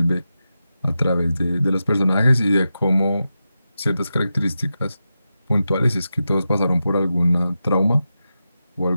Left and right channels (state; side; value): inverted; both; correlation -0.90